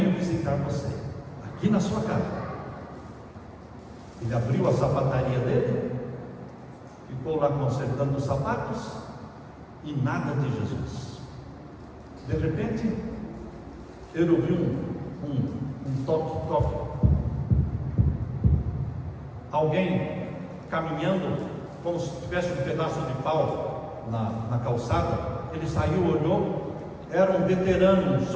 visitar você, aqui na sua casa. Ele abriu a sapataria dele, ficou lá consertando os sapatos, e nada de Jesus. De repente, ele ouviu um toque. Alguém caminhando, como se tivesse um pedaço de pau na calçada. Ele saiu, olhou, era um veterano, um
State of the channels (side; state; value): both; identical; correlation 1.00